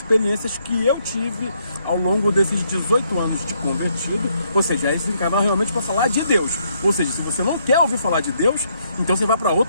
que eu tive ao longo desses 18 anos de convertido. Ou seja, esse canal realmente para falar de Deus. Ou seja, se você não quer ouvir falar de Deus, então você vai para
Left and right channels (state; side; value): inverted; both; correlation -0.73